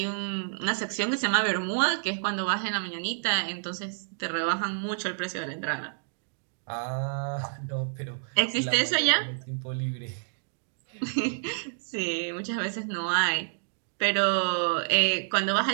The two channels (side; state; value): left; silent; digital silence